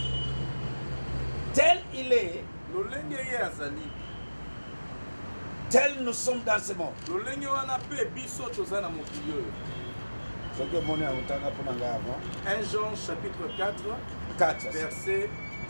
tel il est, tel nous sommes dans ce monde. Ce que mon 1 Jean chapitre 4 verset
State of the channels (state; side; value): inverted; both; correlation -1.00